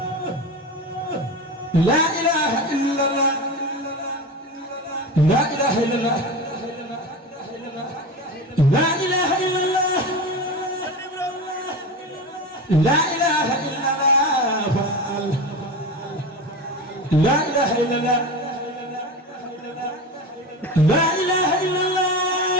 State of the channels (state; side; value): normal; both; correlation 0.26